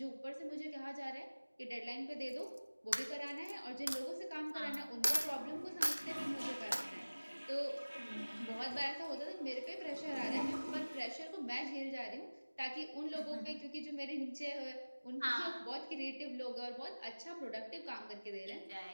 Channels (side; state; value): both; inverted; correlation -1.00